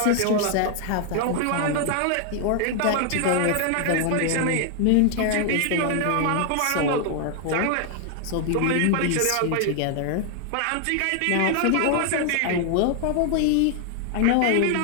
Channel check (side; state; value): both; different; correlation 0.00